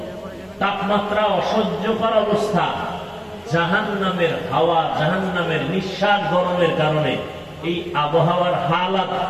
তাপমাত্রা অসহ্যকর অবস্থা, জাহান্নামের হাওয়া, জাহান্নামের নিঃশ্বাস গরমের কারণে এই আবহাওয়ার হালাত।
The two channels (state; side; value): identical; both; correlation 1.00